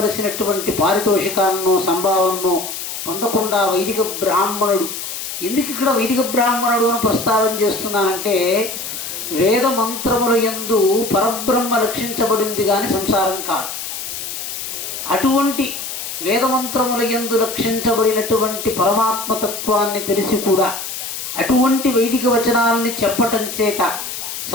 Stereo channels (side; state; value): left; noise; hiss, 7 dB below the sound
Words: పారితోషికాలను సంభావనను పొందకుండా వైదిక బ్రాహ్మణుడు, ఎందుకు ఇక్కడ వైదిక బ్రాహ్మణుడు అని ప్రస్తావన చేస్తున్నానంటే, వేద మంత్రముల యందు పరబ్రహ్మ లక్షించబడింది కానీ సంసారం కాదు. అటువంటి వేదమంత్రముల యందు లక్షించబడినటువంటి పరమాత్మతత్వాన్ని తెలిసి కూడా అటువంటి వైదిక వచనాలని చెప్పటం చేత